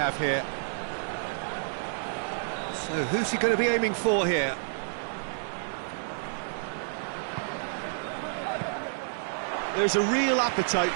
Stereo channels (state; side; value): silent; left; digital silence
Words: here. So who's he going to be aiming for here? There's a real appetite